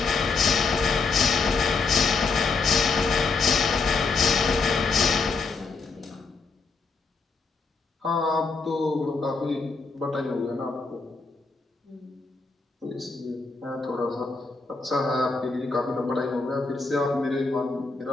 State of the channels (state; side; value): quieter; right; 4.3 dB